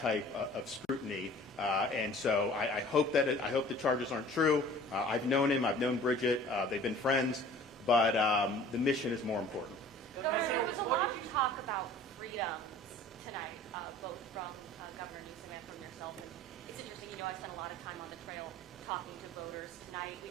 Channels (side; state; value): both; normal; correlation 0.47